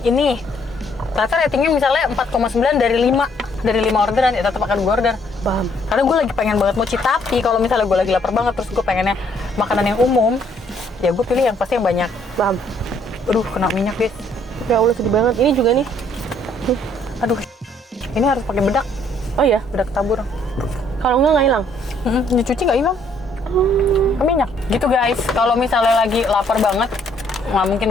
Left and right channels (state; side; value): normal; both; correlation 0.66